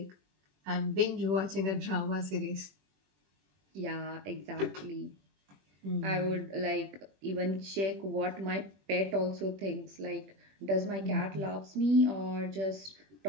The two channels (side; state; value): left; late; 21 ms